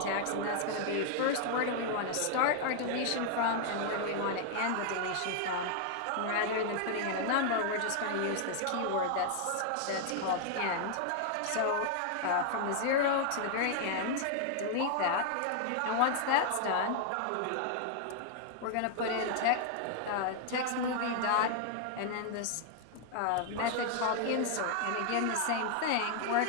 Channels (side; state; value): both; different; correlation 0.00